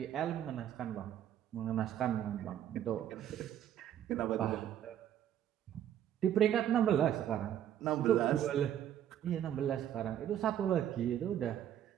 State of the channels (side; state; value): left; quieter; 10.7 dB